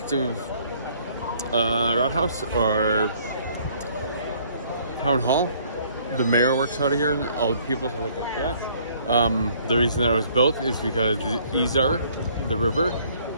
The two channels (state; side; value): inverted; both; correlation -0.61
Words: Rathaus or town hall. The mayor works out of here, and all the people look like that. The reason that it was built is because the Isar, the river,